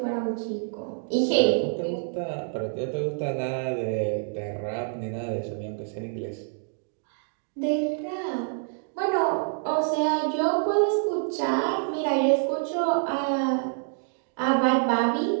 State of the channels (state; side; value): silent; left; digital silence